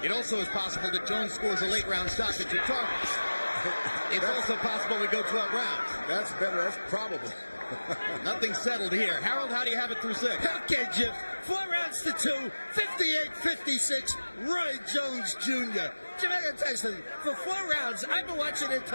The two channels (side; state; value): both; inverted; correlation -1.00